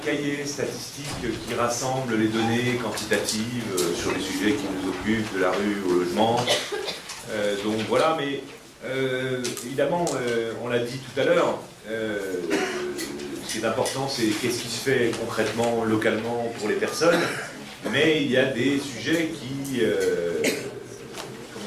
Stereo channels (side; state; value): both; identical; correlation 1.00